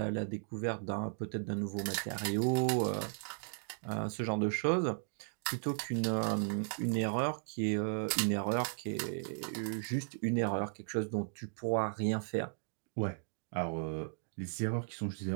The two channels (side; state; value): left; silent; digital silence